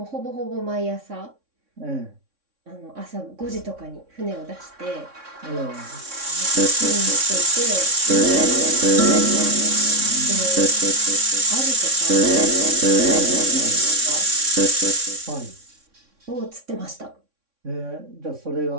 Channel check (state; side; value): late; left; 3.6 ms